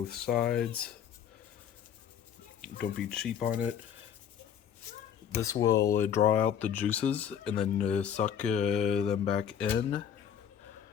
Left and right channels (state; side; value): quieter; right; 8.6 dB